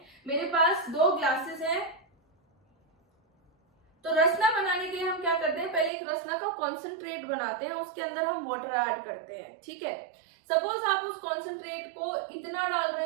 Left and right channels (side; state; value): left; drops out; at 5.9 s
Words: मेरे पास 2 ग्लासेस हैं, तो रसना बनाने के लिए हम क्या करते हैं, पहले एक रसना का कॉन्सेंट्रेट बनाते हैं, उसके अंदर हम वाटर ऐड करते हैं। ठीक है, सपोज आप उस कॉन्सेंट्रेट को इतना डाल रहे